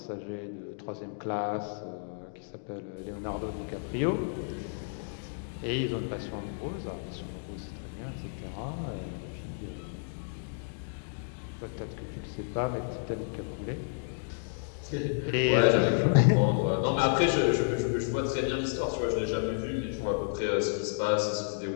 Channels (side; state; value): right; silent; digital silence